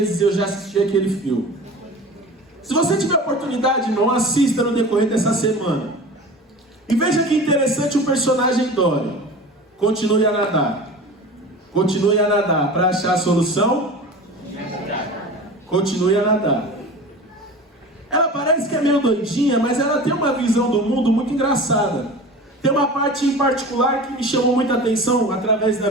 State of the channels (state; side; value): normal; both; correlation 0.36